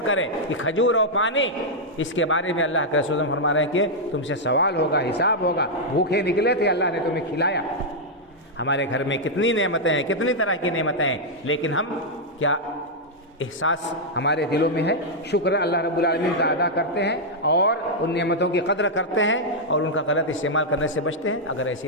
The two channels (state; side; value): normal; both; correlation -0.04